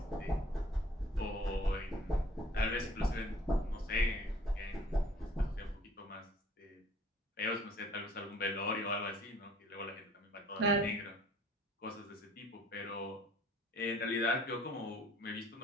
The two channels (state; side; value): normal; both; correlation 0.54